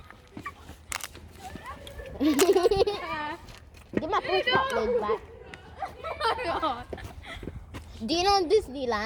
Give my push pop lid back. Do you know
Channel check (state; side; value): identical; both; correlation 1.00